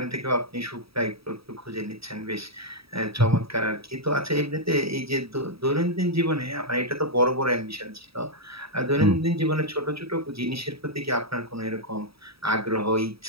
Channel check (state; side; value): late; left; 0.77 ms